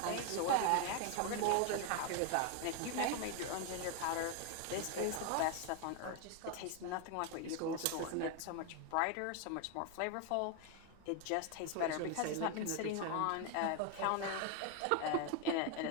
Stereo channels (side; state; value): both; different; correlation 0.01